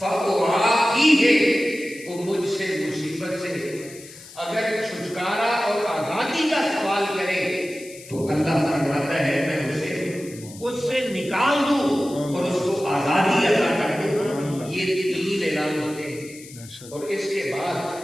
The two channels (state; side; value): noise; left; hiss, 18 dB below the sound